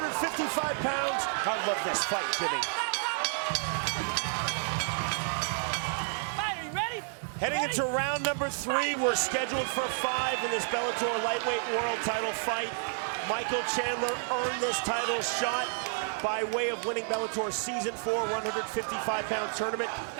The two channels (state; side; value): silent; left; digital silence